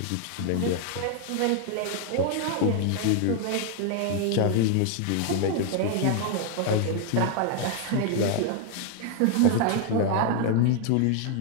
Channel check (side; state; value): both; different; correlation 0.00